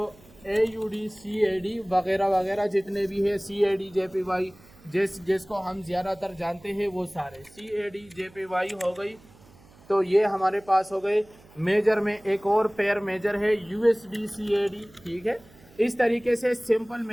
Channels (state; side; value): noise; right; hum, 26 dB below the sound